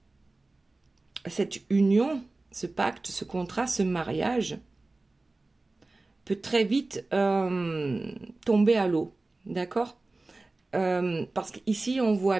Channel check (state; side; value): quieter; left; 3.2 dB